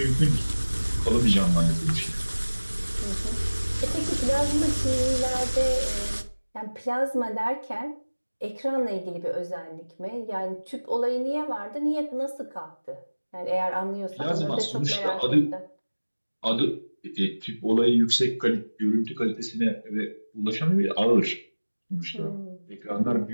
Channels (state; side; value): inverted; both; correlation -1.00